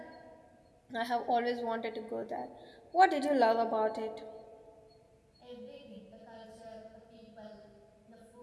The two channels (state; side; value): identical; both; correlation 1.00